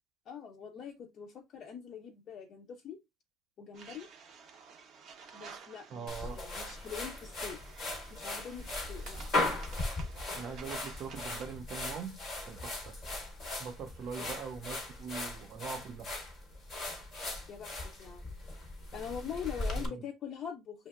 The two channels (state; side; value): normal; both; correlation 0.61